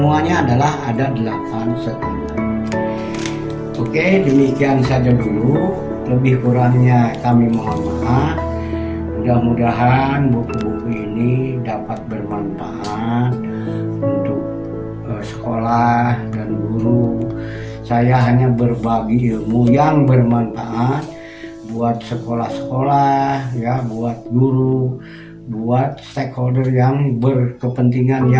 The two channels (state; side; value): identical; both; correlation 1.00